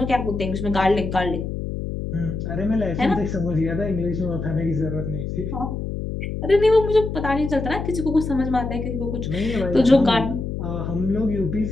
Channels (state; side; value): noise; left; hum, 5 dB below the sound